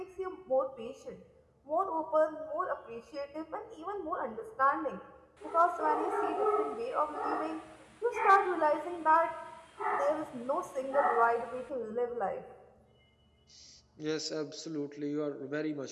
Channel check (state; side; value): identical; both; correlation 1.00